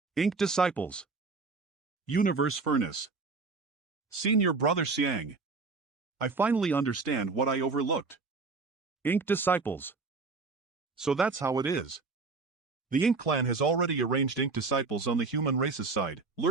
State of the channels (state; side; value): quieter; left; 4.1 dB